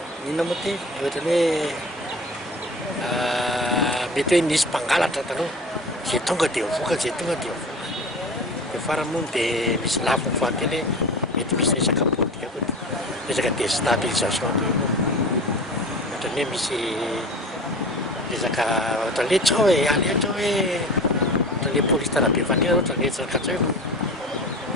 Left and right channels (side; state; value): both; normal; correlation 0.36